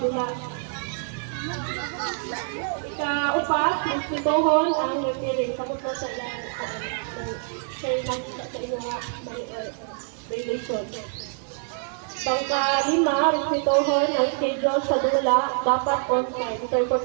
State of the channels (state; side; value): silent; left; 57 dB below the other